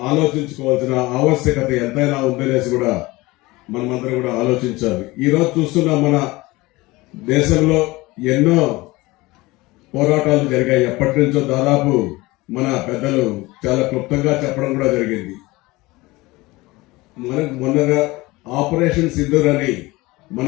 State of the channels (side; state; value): right; quieter; 21.2 dB